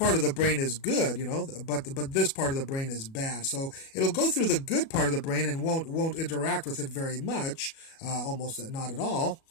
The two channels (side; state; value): right; late; 37 ms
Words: of the brain is good, but this part of the brain is bad. So it'll go through the good part of the brain and won't interact with it very much, almost not at all.